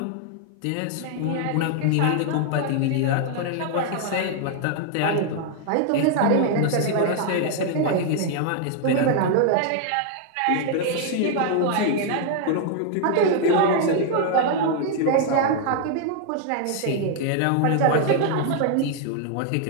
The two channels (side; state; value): both; different; correlation 0.00